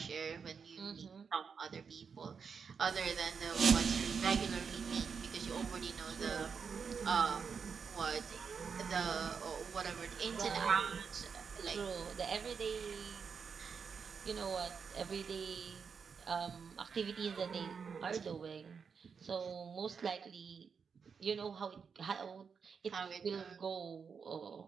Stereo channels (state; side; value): quieter; left; 6.0 dB